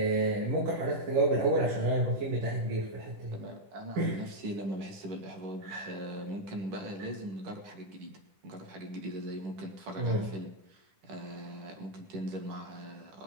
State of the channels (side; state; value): left; late; 10 ms